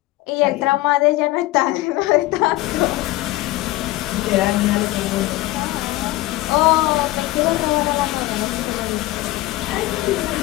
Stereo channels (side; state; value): right; quieter; 17.9 dB